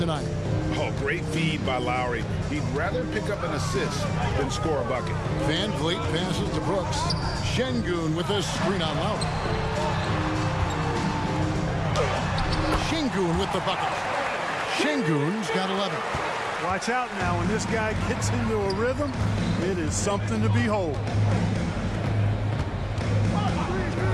Oh, great feed by Lowry. He'd rather pick up an assist than score a bucket. Van Vliet passes to Brooks. Şengün with a screen on Lowry. Şengün with the bucket. Şengün's got 11. Watch out now. When this guy gets into a rhythm, it is something to behold.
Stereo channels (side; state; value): both; identical; correlation 1.00